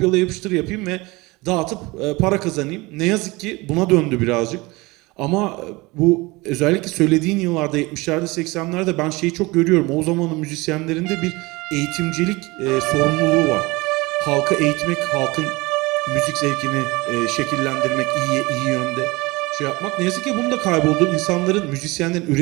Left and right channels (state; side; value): quieter; left; 23.1 dB